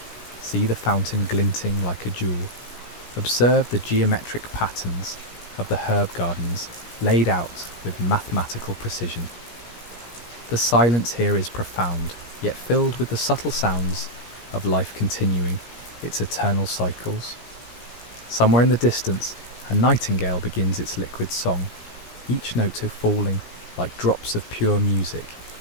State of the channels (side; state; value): right; late; 17 ms